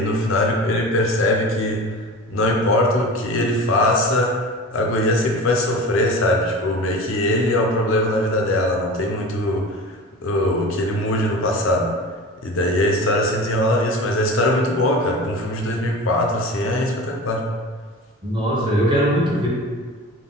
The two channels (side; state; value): both; normal; correlation 0.34